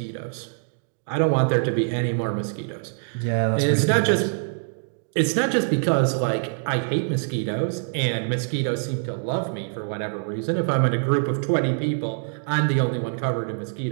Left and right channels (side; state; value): left; silent; digital silence